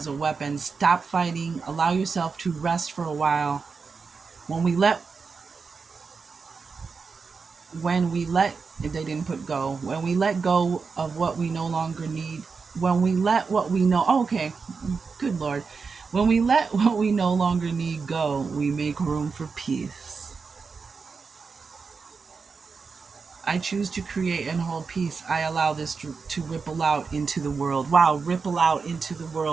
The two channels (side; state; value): left; quieter; 5.0 dB